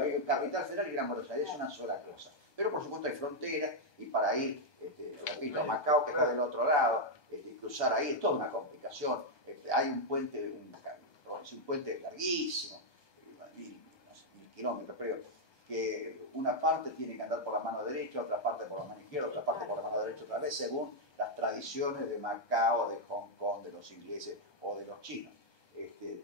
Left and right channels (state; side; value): late; right; 1.2 ms